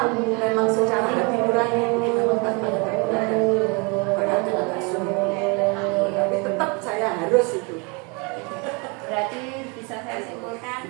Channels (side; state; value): left; quieter; 31.2 dB